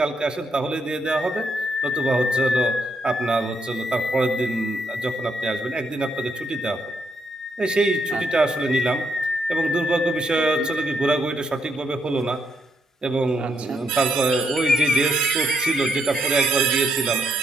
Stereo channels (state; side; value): normal; both; correlation 0.76